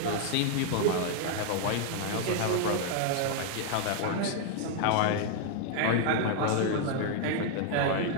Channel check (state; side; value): different; both; correlation 0.00